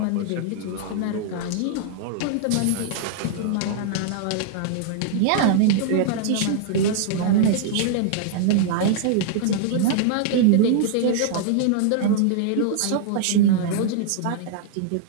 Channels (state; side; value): different; both; correlation -0.01